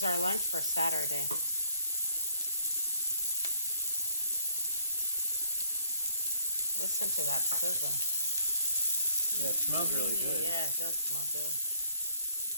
our lunch for Saturday. Listen to that sizzle. Yeah, it smells really good. Yeah, it does smell good.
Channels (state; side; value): inverted; both; correlation -0.64